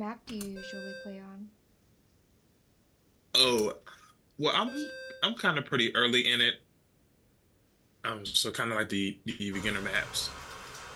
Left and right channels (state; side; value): identical; both; correlation 1.00